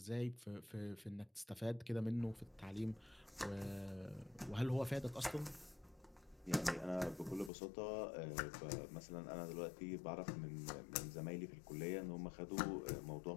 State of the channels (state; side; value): drops out; right; at 7.5 s